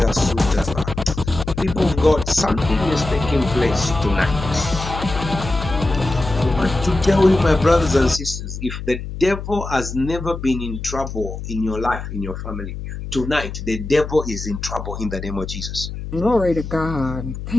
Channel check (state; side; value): noise; left; hum, 8 dB below the sound